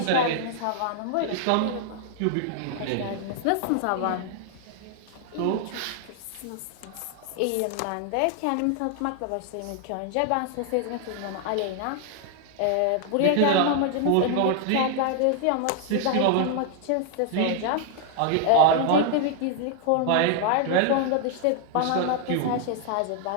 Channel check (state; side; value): different; both; correlation 0.00